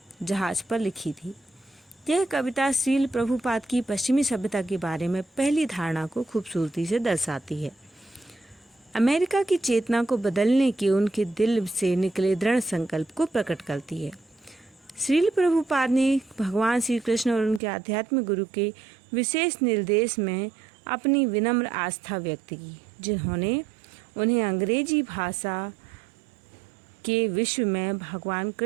जहाज पर लिखी थी। यह कविता श्रील प्रभुपाद की पश्चिमी सभ्यता के बारे में पहली धारणा को खूबसूरती से दर्शाती है। अमेरिका की चेतना को बदलने के उनके दिल से निकले दृढ़ संकल्प को प्रकट करती है। श्रील प्रभुपाद ने भगवान श्री कृष्ण और उनके आध्यात्मिक गुरु के विशेष निर्देश में अपनी विनम्र आस्था व्यक्त की, जिन्होंने उन्हें अंग्रेजी भाषा के विश्व में भगवान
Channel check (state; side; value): drops out; left; at 17.6 s